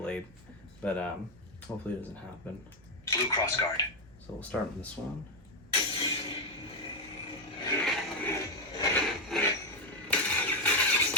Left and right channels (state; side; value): noise; right; hum, 25 dB below the sound